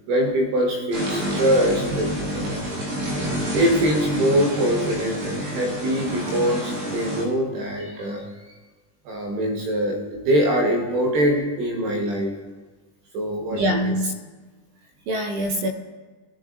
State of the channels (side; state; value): left; late; 20 ms